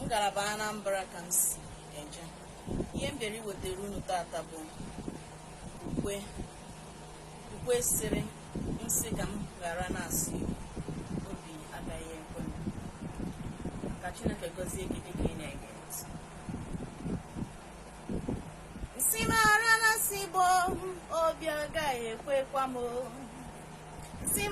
Ngalaba Anambra ka m si eje. Ihe m bịara iwetara unu tata bụ ukwe sịrị nsị ka m ghara na-asị obi agaghị ekwe m. Ka Chineke gọzie gị dịka ị na-ege ntị. Nsị m ghara na-asị Igbo obi agaghị ekwekwa m. Nsị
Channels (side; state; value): both; identical; correlation 1.00